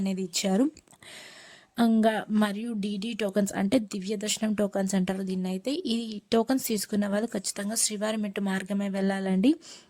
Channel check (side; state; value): both; identical; correlation 1.00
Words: ఇచ్చారు. ఇంకా మరియు డీడీ టోకన్స్ అంటే దివ్య దర్శనం టోకన్స్ అంటారు దీన్ని. అయితే ఈ టోకన్స్ తీసుకున్న వాళ్ళు ఖచ్చితంగా శ్రీవారి మెట్టు మార్గమే వెళ్ళాలండి.